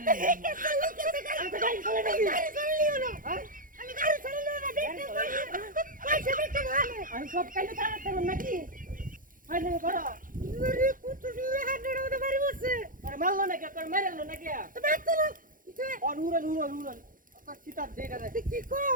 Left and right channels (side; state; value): left; late; 0.40 ms